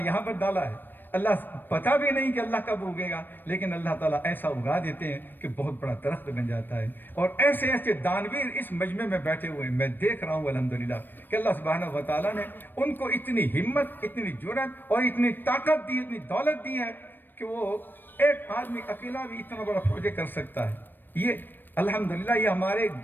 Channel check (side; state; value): right; late; 0.093 ms